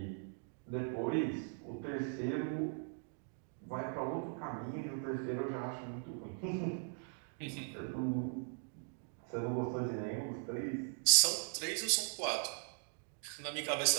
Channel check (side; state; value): left; silent; 52 dB below the other